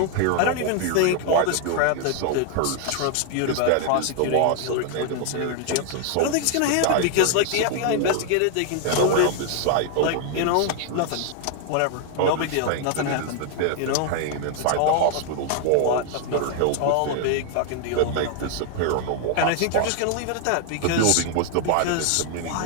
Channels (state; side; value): different; both; correlation 0.00